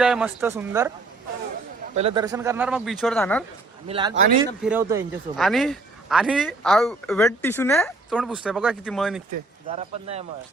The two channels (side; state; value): left; quieter; 3.3 dB